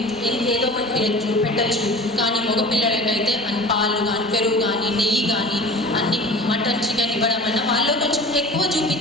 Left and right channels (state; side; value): normal; both; correlation 0.38